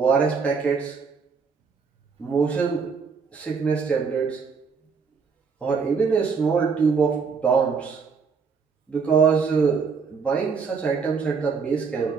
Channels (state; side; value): quieter; left; 5.5 dB